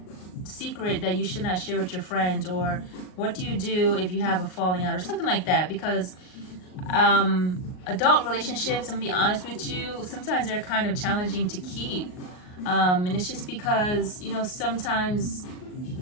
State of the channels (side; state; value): right; late; 38 ms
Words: secret that you should not share with your friends, or what do you do if you have a falling out, or something like that. Because adult relationships, I'm gonna be honest with you, sometimes they're kind of challenging to keep, and it's just because sometimes,